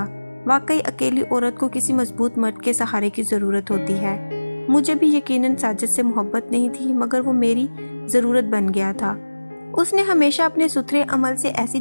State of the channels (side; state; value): both; inverted; correlation -1.00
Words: वाकई अकेली औरत को किसी मजबूत मर्द के सहारे की ज़रूरत होती है। मुझे भी यकीनन साजिद से मोहब्बत नहीं थी, मगर वो मेरी ज़रूरत बन गया था। उसने हमेशा अपने सुथरे अमल से ऐसी